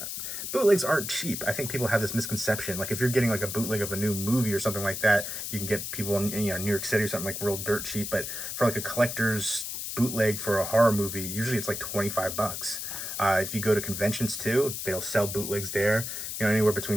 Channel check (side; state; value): left; noise; hiss, 5 dB below the sound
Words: bootlegs aren't cheap. I think people have this misconception. Like if you're getting like a bootleg of a new movie or something like that, you can get people in, you know, New York City or something like real dirt cheap. But for like a collector's bootleg for a horror movie, usually it's like 25 bucks. If you go to conventions too, they'll sell bootlegs there, you know, anywhere